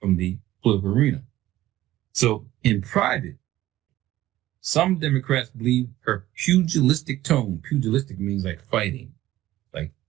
the political arena. So in private, some Democrats believe her pugilistic tone. Pugilistic means like fighting, like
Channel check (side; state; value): left; quieter; 15.2 dB